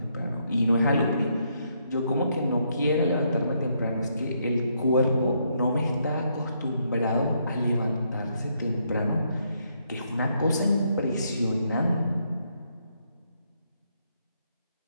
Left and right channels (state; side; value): inverted; both; correlation -0.75